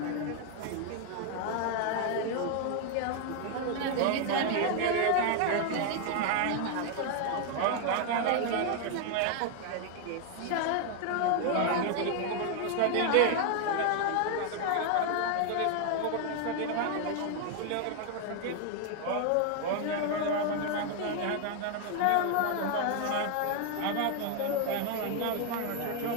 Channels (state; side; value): different; both; correlation 0.00